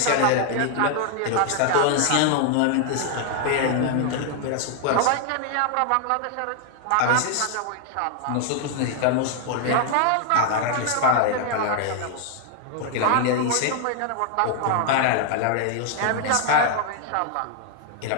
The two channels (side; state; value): both; different; correlation 0.00